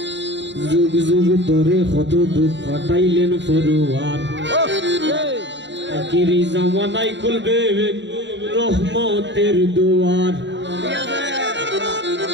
যুগ যুগ ধরে কত দুধ পাঠাইলেন ফরোয়ার আখিরি জামানায় খুলবে রহমতের দুয়ার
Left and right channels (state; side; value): late; left; 0.53 ms